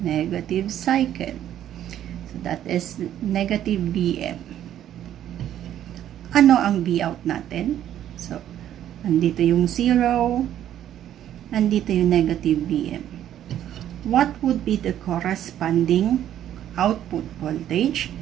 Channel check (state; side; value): quieter; left; 11.2 dB